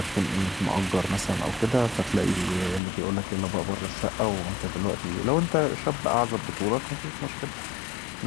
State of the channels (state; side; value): drops out; right; at 2.8 s